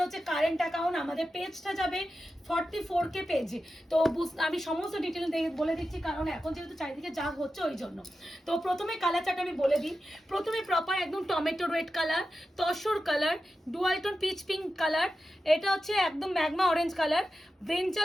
হচ্ছে কারেন্ট অ্যাকাউন্ট, আমাদের পেজটা যাবে 44K পেজে। তো আমি সমস্ত ডিটেল বলে দিচ্ছি, কারণ এখন যেহেতু চারিদিকে যা হচ্ছে ওই জন্য। তো প্রথমে কালার চার্ট আমি বলে দিই। প্রথমে প্রপার একদম tomato red colour, tussar colour, dualtone peach pink colour, এটা হচ্ছে একদম magma orange colour,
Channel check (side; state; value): both; normal; correlation 0.92